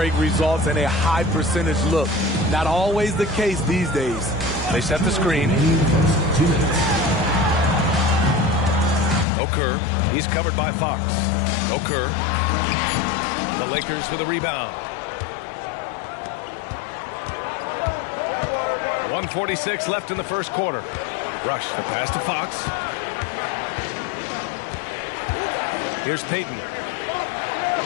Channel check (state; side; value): drops out; right; at 9.2 s